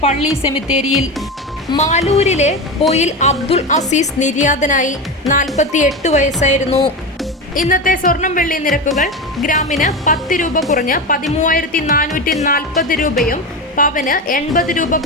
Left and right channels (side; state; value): both; normal; correlation 0.21